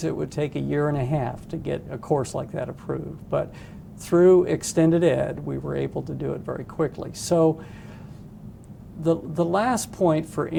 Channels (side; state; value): both; identical; correlation 1.00